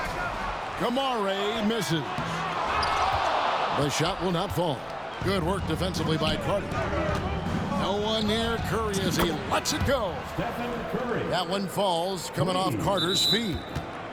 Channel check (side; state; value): both; identical; correlation 1.00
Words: Kamare misses. The shot will not fall. Good work defensively by Carter. No one near Curry as he lets it go. That one falls, coming off Carter's feet.